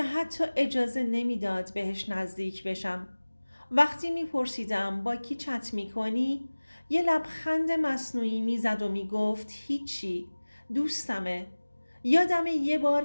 حتی اجازه نمیداد بهش نزدیک بشم. وقتی میپرسیدم با کی چت میکنی یه لبخند مصنوعی میزد و میگفت هیچی، دوستمه. یادم یه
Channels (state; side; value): inverted; both; correlation -1.00